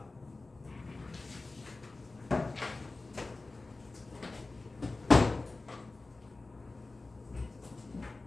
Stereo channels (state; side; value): quieter; right; 3.4 dB